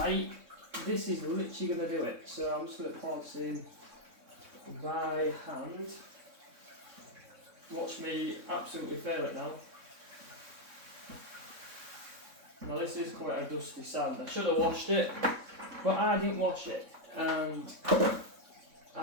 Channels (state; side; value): late; left; 3.6 ms